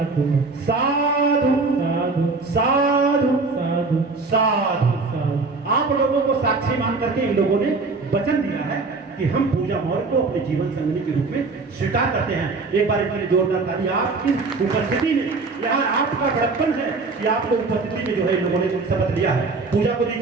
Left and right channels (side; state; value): left; quieter; 3.9 dB